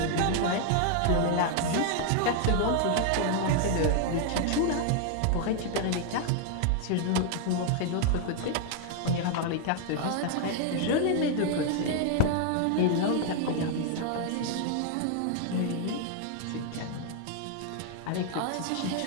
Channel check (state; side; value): different; both; correlation 0.00